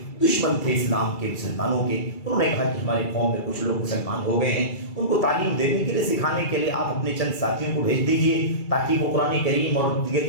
دشمن تھے اسلام کے, مسلمانوں کے. انہوں نے کہا کہ ہمارے قوم میں کچھ لوگ مسلمان ہو گئے ہیں, ان کو تعلیم دینے کے لیے, سکھانے کے لیے آپ اپنے چند ساتھیوں کو بھیج دیجئے تاکہ وہ قرآن کریم اور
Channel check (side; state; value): right; late; 2.3 ms